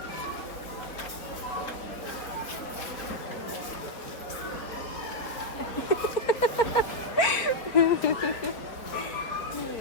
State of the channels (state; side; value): late; right; 4.5 ms